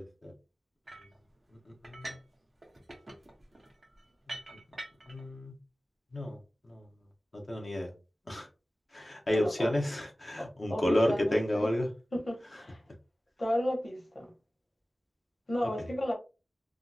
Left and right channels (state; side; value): normal; both; correlation 0.96